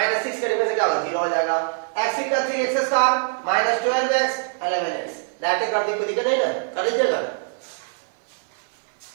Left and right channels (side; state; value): left; silent; 60 dB below the other